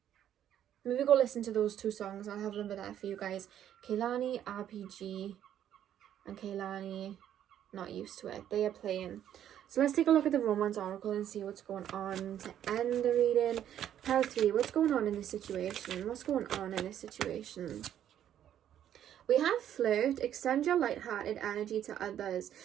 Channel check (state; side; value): quieter; left; 10.6 dB